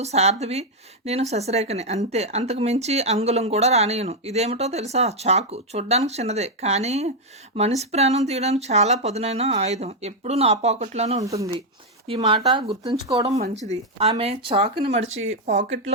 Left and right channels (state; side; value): normal; both; correlation 0.01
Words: శారదివి, నేను శశిరేఖని, అంతే. అంతకు మించి అంగుళం కూడా రానియను. ఇదేమిటో తెలుసా? చాకు. చూడ్డానికి చిన్నదే, కానీ మనిషి ప్రాణం తీయడానికి చాలా పదునైన ఆయుధం. ఎప్పుడూ నా పాకెట్లోనే ఉంటుంది. ఈ మాట గుర్తుంచుకోవడం మంచిది. ఆమె చాకుని మడిచి